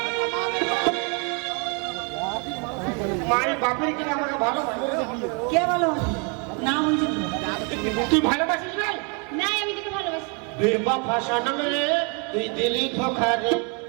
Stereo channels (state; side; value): quieter; left; 34.4 dB